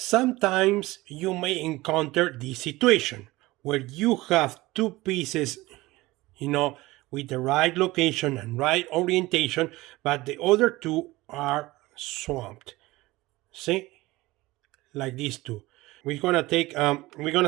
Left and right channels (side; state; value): left; quieter; 19.6 dB